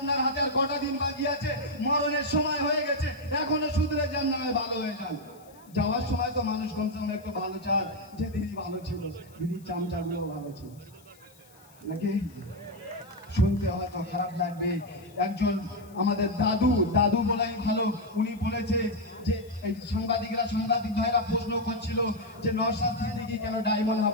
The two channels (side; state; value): left; noise; hiss, 27 dB below the sound